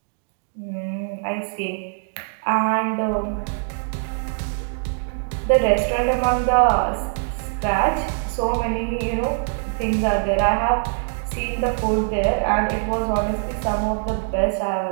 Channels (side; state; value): left; silent; digital silence